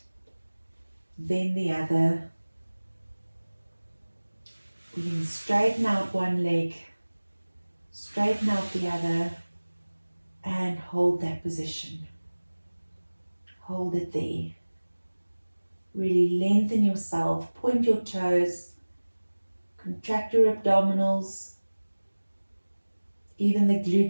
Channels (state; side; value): inverted; both; correlation -1.00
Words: then the other. We're going to straighten out one leg, straighten out the other, and hold that position. Hold it there. Really lengthen yourself, point your toes, contract your abdominals. Even the